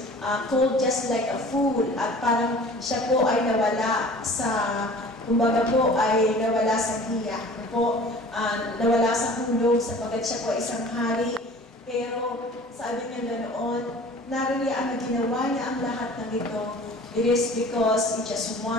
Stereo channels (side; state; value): both; normal; correlation 0.45